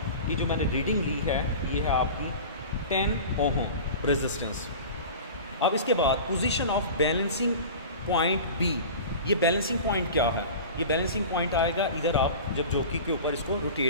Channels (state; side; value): inverted; both; correlation -0.35